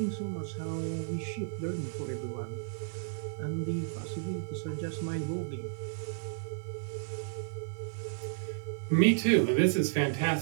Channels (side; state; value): left; silent; digital silence